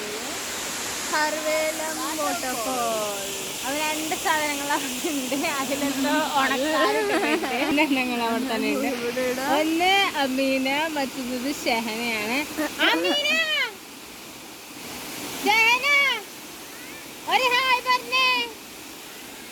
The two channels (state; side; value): identical; both; correlation 1.00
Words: സർവേലം വാട്ടർഫോൾ. അത് 2 സാധനങ്ങൾ അവിടെ ഉണ്ട്. അതിലെന്തോ ഉണക്കാരങ്ങൾ അവിടെ തന്നെ ഉണ്ട്. ഒന്ന് അമീന, മറ്റൊന്നത് ഷെഹനയാണ്. അമീന, ഷെഹന ഒരു ഹായ് പറഞ്ഞേ.